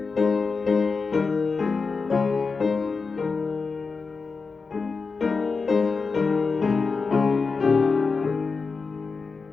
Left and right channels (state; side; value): quieter; right; 4.6 dB